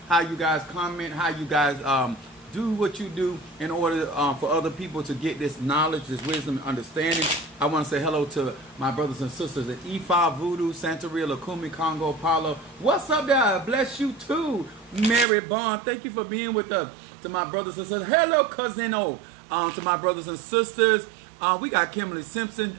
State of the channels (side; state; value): left; drops out; at 15.2 s